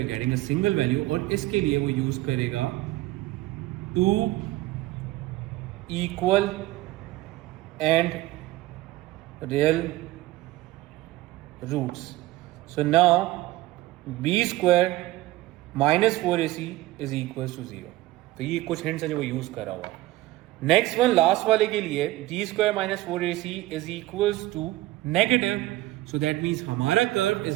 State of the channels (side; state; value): left; quieter; 17.3 dB